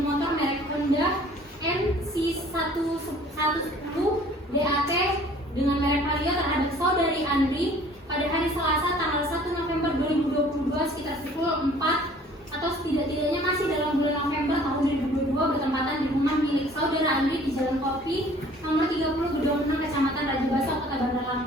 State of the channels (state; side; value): normal; both; correlation 0.52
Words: merek Honda NC110 DAT dengan merek Vario terhadap saudari Andri pada hari Selasa tanggal 1 November 2022 sekitar pukul 4 atau setidak-tidaknya masih dalam bulan November tahun 2022 bertempatan di rumah milik saudara Andri di Jalan Kopi nomor 30 Gedung Menang, Kecamatan Raja Basah, Kota Bandar